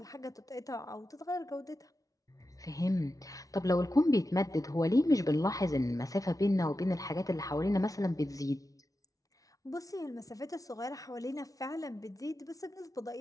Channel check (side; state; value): right; late; 0.17 ms